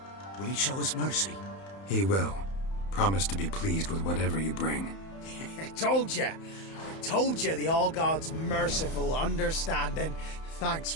Will he show us mercy? He will. Promise to be pleased with whatever you bring. I told you the All-God's merciful, understanding. Thanks,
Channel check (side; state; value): right; late; 31 ms